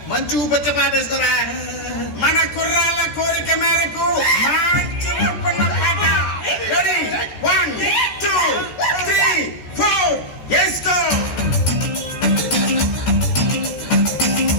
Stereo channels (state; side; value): late; right; 14 ms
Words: మంచి ఊపచ్చ పాట వేసుకోరా. మన కుర్రాళ్ళ కోరిక మేరకు మంచి ఊపున్న పాట. రెడీ 1 2 3 4 వేసుకో.